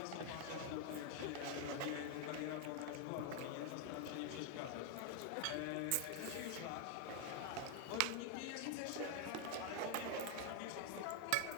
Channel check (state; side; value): different; both; correlation 0.01